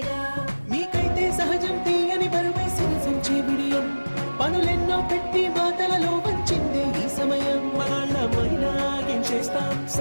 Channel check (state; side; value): inverted; both; correlation -1.00